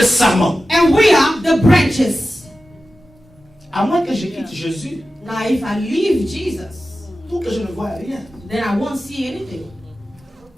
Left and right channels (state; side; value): normal; both; correlation 0.94